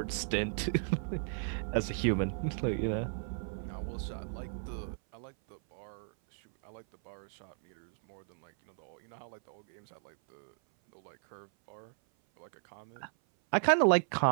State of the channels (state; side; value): silent; left; 54 dB below the other